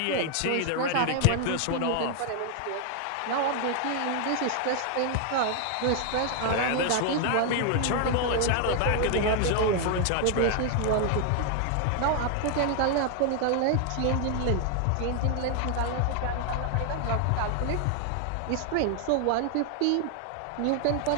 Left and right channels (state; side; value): different; both; correlation 0.00